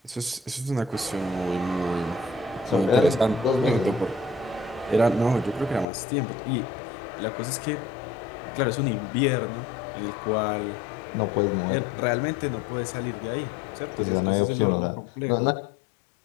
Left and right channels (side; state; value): right; drops out; at 5.9 s